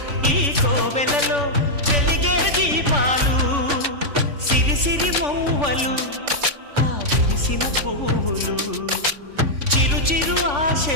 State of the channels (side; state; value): left; late; 3.5 ms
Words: ఈ కోవెలలో వెలిగే దీపాలు సిరి సిరి మౌవలు ఆ విరిసిన పువ్వులు చిరు చిరు